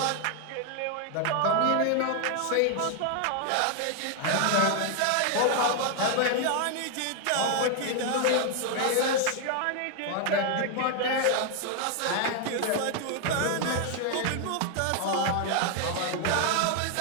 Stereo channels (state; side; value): different; both; correlation 0.00